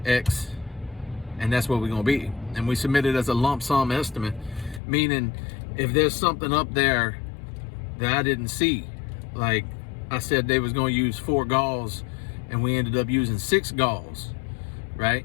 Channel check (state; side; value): drops out; right; at 4.8 s